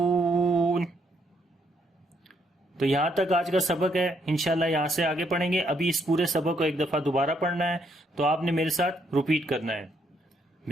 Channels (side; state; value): both; normal; correlation 0.73